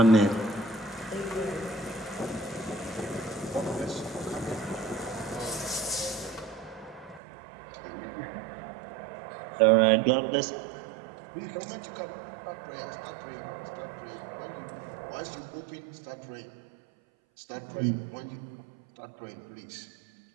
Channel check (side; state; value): left; drops out; at 7.2 s